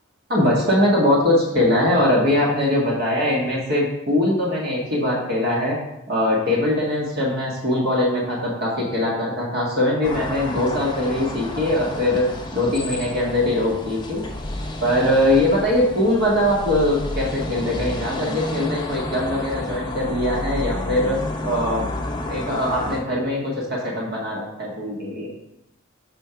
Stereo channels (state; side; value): normal; both; correlation 0.18